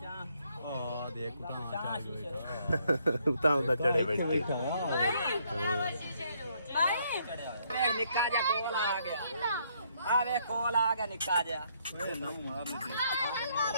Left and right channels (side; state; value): both; inverted; correlation -0.70